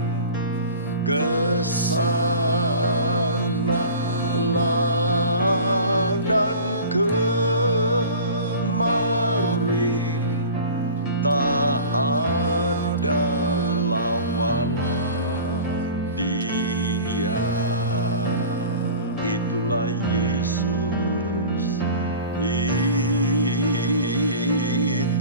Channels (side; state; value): both; inverted; correlation -0.39